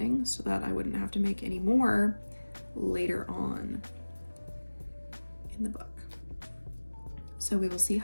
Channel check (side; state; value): both; inverted; correlation -1.00